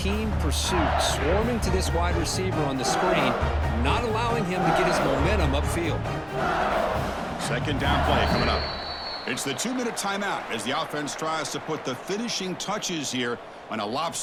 pursuit. Swarming to this wide receiver on the screen, not allowing him to get his momentum upfield. 2nd down play coming up. It's the 2-minute timeout as the offense tries to put the finishing touches here on a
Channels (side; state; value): both; identical; correlation 1.00